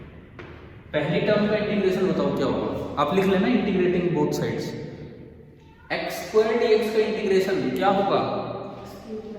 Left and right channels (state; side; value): identical; both; correlation 1.00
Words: पहली टर्म का इंटीग्रेशन बताओ क्या होगा? आप लिख लेना integrating both sides. X square dx का इंटीग्रेशन क्या होगा?